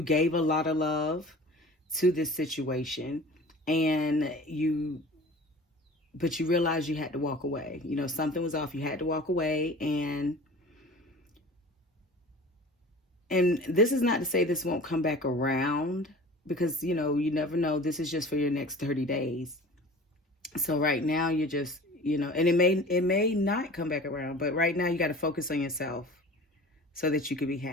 gave a lot of love to this situation, but you realized you had to walk away. Something was off. You had to walk away, and this is not to say this won't come back around, because you never know. This is just for your next 30 days. So right now you're just, and it may not come back around, but right now you got to focus on yourself so that you can be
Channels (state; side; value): normal; both; correlation 0.41